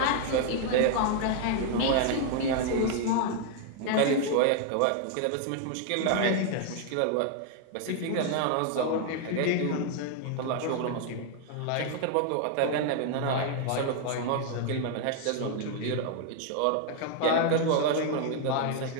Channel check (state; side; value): different; both; correlation 0.00